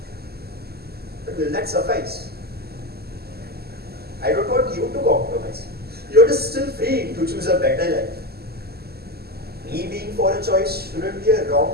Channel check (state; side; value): late; left; 0.46 ms